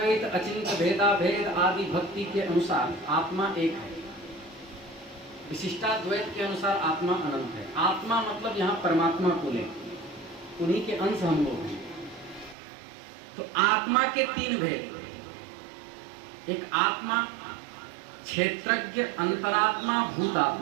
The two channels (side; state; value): left; drops out; at 12.6 s